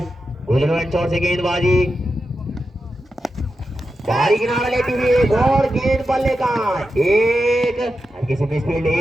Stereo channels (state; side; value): normal; both; correlation 0.89